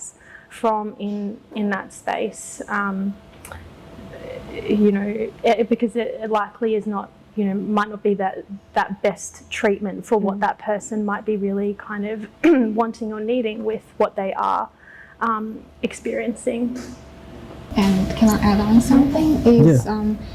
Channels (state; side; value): identical; both; correlation 1.00